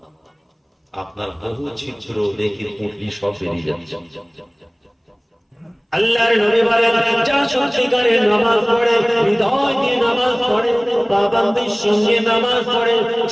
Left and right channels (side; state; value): both; identical; correlation 1.00